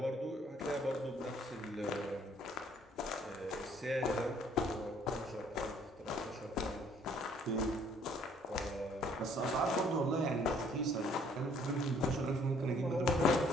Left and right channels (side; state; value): both; normal; correlation 0.61